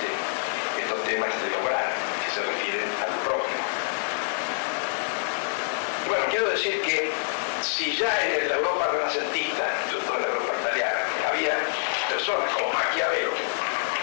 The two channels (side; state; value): right; silent; 61 dB below the other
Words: estos temas de obrar que se refieren al prójimo. Bueno, quiero decir que si ya en la Europa renacentista, sobre todo en la Europa italiana, había personas como Maquiavelo que